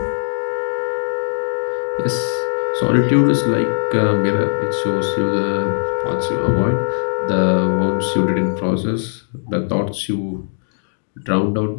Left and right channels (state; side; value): silent; right; digital silence